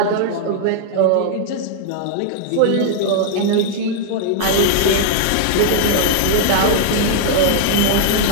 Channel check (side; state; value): both; different; correlation -0.01